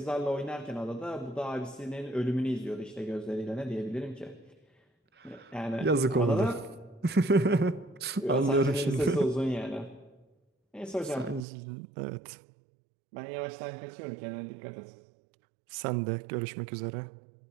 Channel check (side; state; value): left; drops out; at 11.5 s